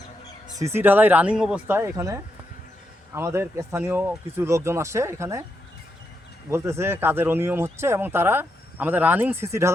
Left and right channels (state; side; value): normal; both; correlation 0.83